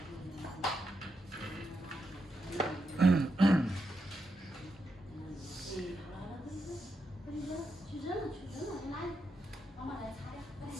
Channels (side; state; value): both; normal; correlation 0.84